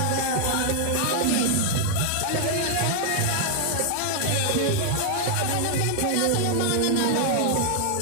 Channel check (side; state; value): both; different; correlation 0.00